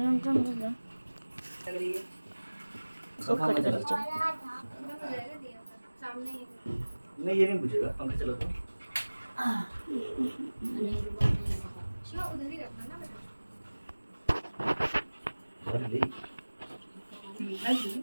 नहीं ये नहीं पूछेगा, पंखा चला तो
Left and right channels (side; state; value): both; inverted; correlation -1.00